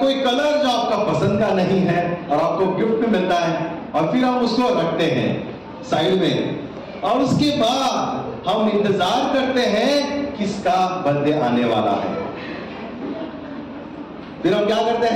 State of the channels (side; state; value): both; identical; correlation 1.00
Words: कलर जो आपका पसंद का नहीं है और आपको गिफ्ट में मिलता है, और फिर हम उसको रखते हैं साइड में। और उसके बाद हम इंतजार करते हैं किसका बर्थडे आने वाला है। फिर हम क्या करते